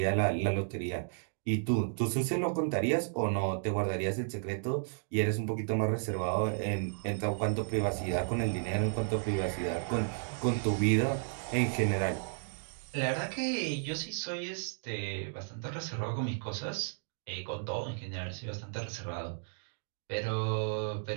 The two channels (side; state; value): left; silent; digital silence